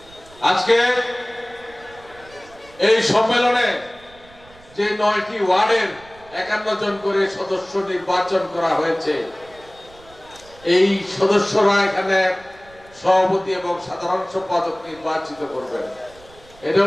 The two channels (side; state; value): right; noise; rumble, 25 dB below the sound